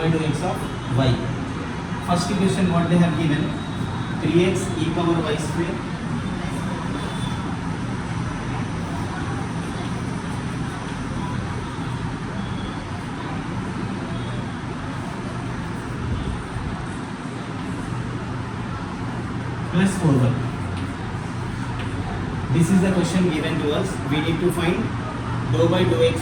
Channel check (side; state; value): both; identical; correlation 1.00